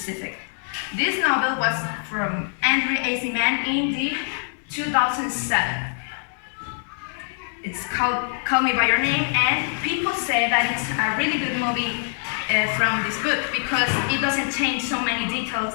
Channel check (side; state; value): right; silent; 63 dB below the other